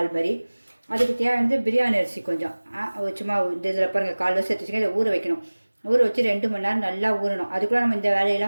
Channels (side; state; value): both; inverted; correlation -1.00